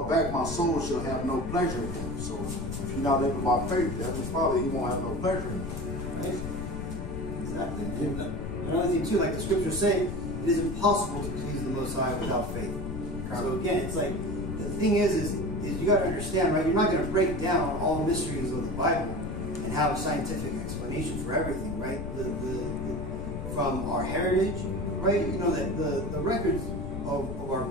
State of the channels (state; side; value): noise; left; rumble, 6 dB below the sound